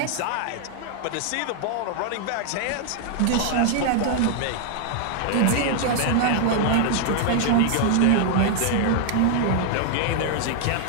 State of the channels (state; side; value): different; both; correlation 0.00